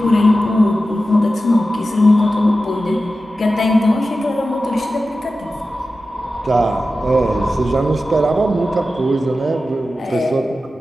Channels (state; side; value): normal; both; correlation 0.93